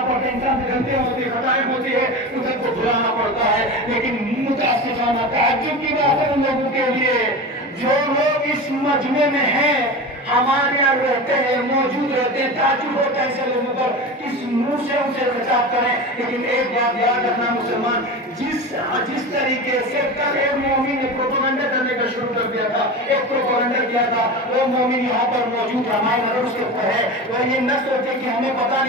پڑتا ہے، انسان سے غلطیاں ہوتی ہے، خطائیں ہوتی ہے، دوسرے کو بھلانا پڑتا ہے، لیکن متاسفانہ تعجب کی بات ہے ان لوگوں کے لیے جو لوگ اس مجمع میں ہیں، ہمارے یہاں رہتے ہیں، موجود رہتے ہیں، تعجب ہوتا ہے ایسے لوگوں پر کس منہ سے اسے خطاب کریں۔ لیکن ایک بات یاد رکھنا مسلمان، جس طریقے سے کل ایک مومن نے پروپیگنڈا کرنے کا شروع کر دیا تھا، ایک پروپیگنڈا کیا تھا، وہ مومن یہاں پر موجود ہماری نظر اس کے اوپر ہے، وہ یہ نہ سوچے کہ ہمیں پتہ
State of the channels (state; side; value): normal; both; correlation 0.28